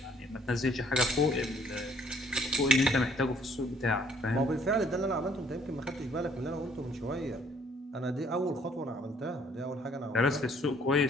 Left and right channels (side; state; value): both; normal; correlation 0.62